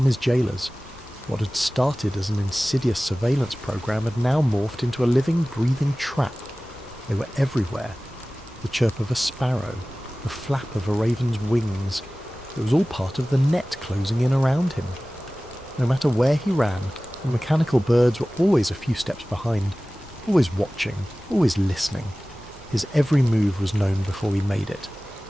his jailers. What had started as an insidious surveillance program had now morphed into a living, breathing trap. They were everywhere. The chirp of a sparrow, the flap of a raven's wings. It was all part of the net closing in around him. No matter where he ran, the mechanical birds were always a few steps behind, always watching, always listening. His every move was known before he made it.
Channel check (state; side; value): normal; both; correlation 0.97